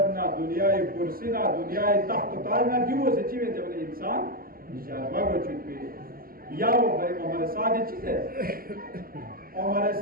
ना दुनियाई कुर्सी ना दुनियाई तख्त ताज ना दी वो सच्ची में जब इंसान जरबा को चुके या वो भाई हमारे साथ ही चीज़ है हमारे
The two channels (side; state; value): left; late; 0.42 ms